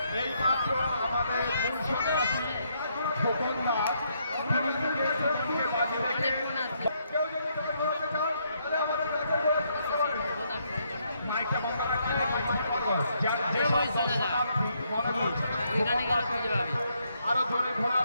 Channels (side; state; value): both; inverted; correlation -0.74